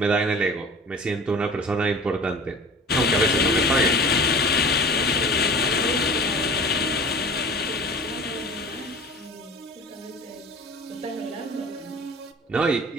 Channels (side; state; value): both; normal; correlation 0.41